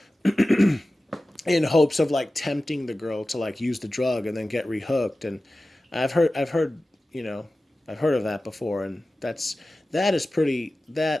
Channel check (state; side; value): normal; both; correlation 0.95